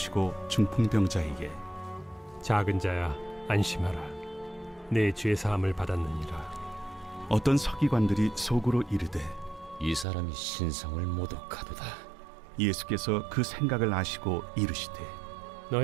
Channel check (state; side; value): drops out; left; at 10.1 s